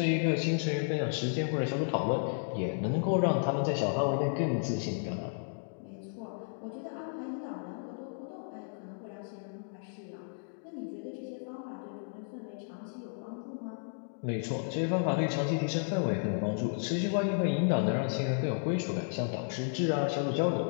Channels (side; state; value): right; silent; digital silence